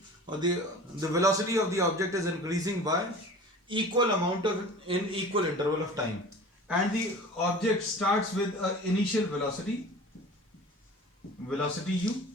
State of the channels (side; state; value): both; normal; correlation 0.41